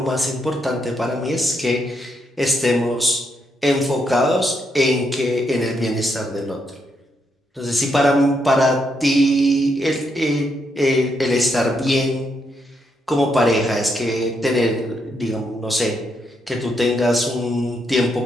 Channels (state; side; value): normal; both; correlation 0.79